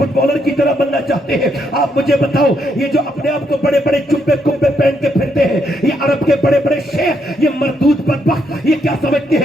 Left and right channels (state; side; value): normal; both; correlation 0.76